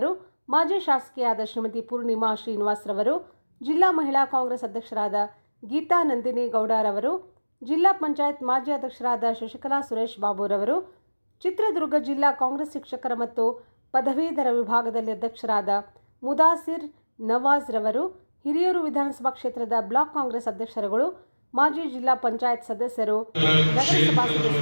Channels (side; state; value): both; inverted; correlation -1.00